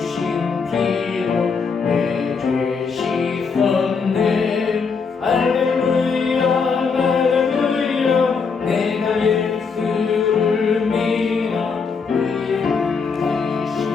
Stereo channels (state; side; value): quieter; right; 5.3 dB